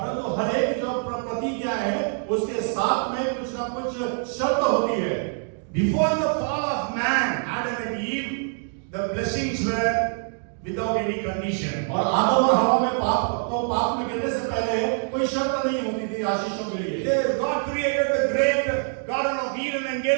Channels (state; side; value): silent; left; 57 dB below the other